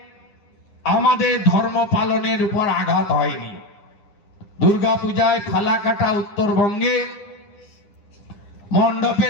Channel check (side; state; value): right; late; 9.9 ms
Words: আমাদের ধর্ম পালনের উপর আঘাত হয়নি। দুর্গা পূজায় ফালাকাটা উত্তরবঙ্গে